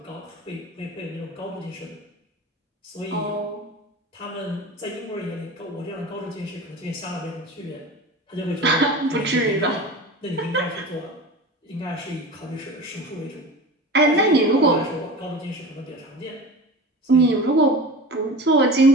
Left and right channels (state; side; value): normal; both; correlation 0.33